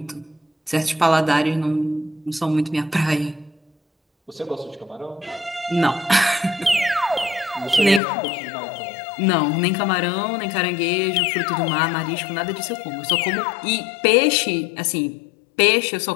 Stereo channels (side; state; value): right; drops out; at 8.0 s